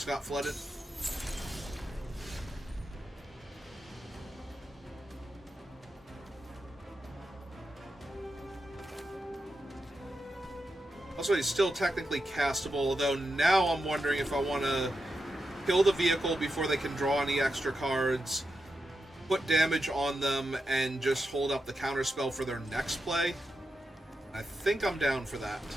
got flooded. Also, he's still technically castable, although now I'm wondering if I want to kill the vehicle before they can draw any extra cards, put damage on them, and just hold up the counterspell for their next play. I think I'm down for that.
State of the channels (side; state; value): both; normal; correlation 0.88